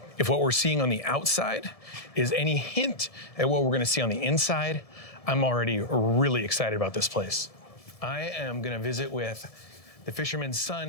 If what we're seeing on the outside is any hint at what we're gonna see on the inside, I'm already really excited about this place. I am gonna visit with the fisherman's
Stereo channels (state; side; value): late; right; 1.7 ms